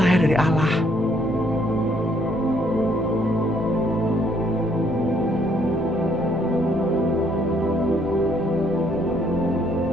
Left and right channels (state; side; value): noise; right; rumble, 18 dB below the sound